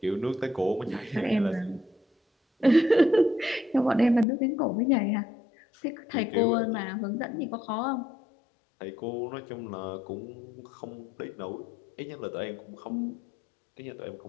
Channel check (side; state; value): right; drops out; at 4.2 s